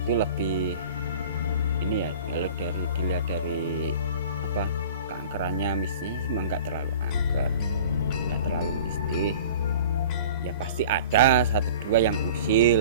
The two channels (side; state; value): both; inverted; correlation -0.42